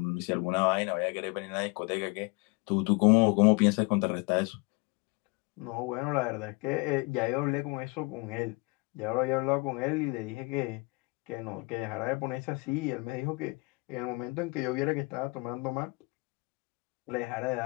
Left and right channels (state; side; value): quieter; right; 28.3 dB